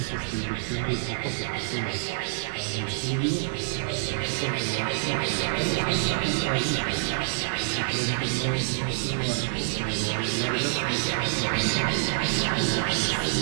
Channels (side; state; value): left; silent; digital silence